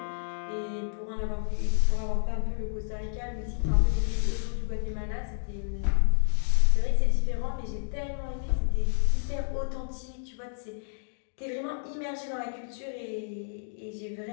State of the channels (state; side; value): silent; right; digital silence